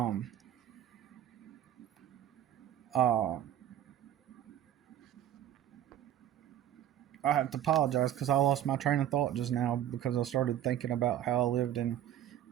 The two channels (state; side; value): quieter; left; 11.3 dB